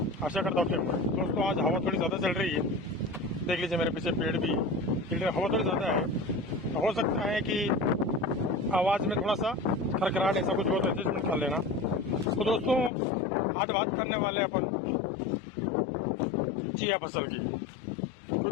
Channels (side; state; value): right; drops out; at 12.9 s